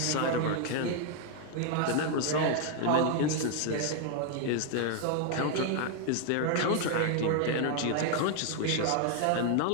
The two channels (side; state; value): both; different; correlation 0.00